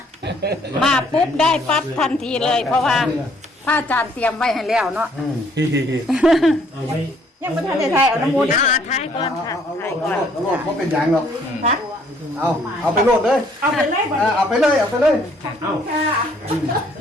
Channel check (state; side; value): normal; both; correlation 0.63